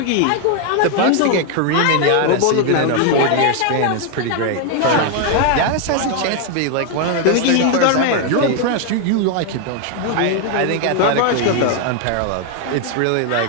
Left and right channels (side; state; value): both; different; correlation 0.00